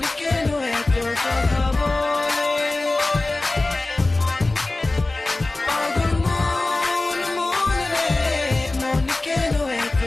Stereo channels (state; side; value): quieter; right; 3.0 dB